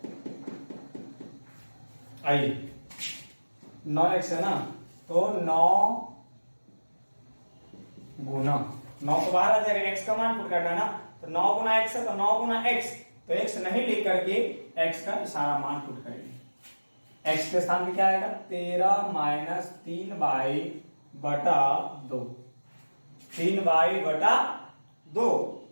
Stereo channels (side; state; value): both; inverted; correlation -1.00